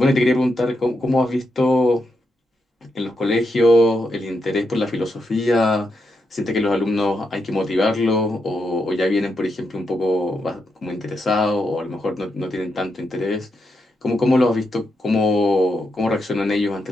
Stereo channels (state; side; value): normal; both; correlation 0.83